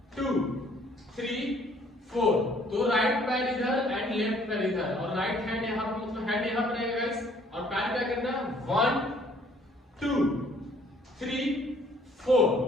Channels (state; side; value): normal; both; correlation 0.60